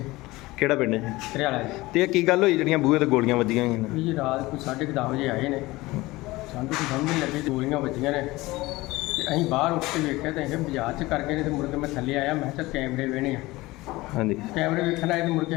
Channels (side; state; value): right; quieter; 20.1 dB